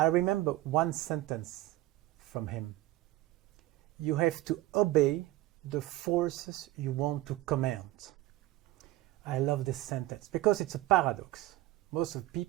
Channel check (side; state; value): left; quieter; 16.4 dB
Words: remember one sentence from him. You have to obey the forces you want to command. I love this sentence because it's a paradox. Most of